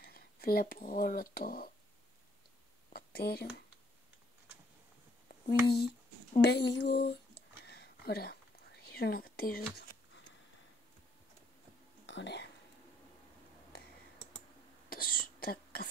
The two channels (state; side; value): normal; both; correlation 0.67